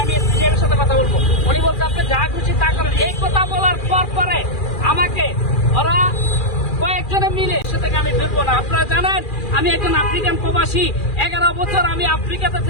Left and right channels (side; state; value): right; late; 2.4 ms